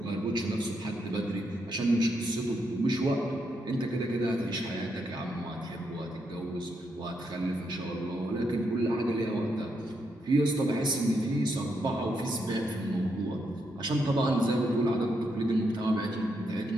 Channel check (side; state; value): both; normal; correlation 0.80